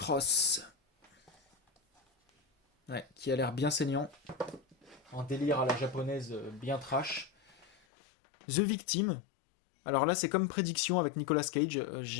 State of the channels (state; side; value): drops out; right; at 7.8 s